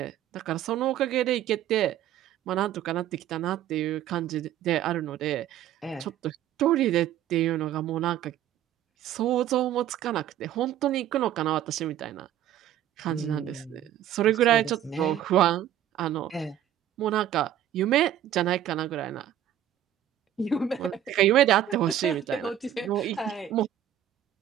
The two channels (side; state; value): left; quieter; 11.3 dB